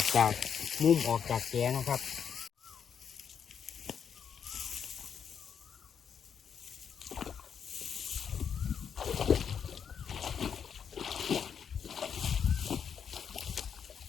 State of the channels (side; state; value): right; quieter; 7.5 dB